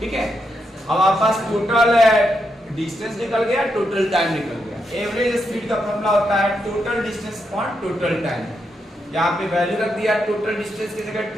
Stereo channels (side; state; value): both; normal; correlation 0.82